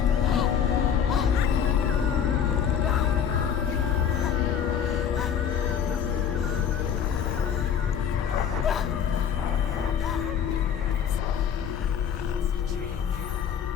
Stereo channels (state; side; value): quieter; right; 8.0 dB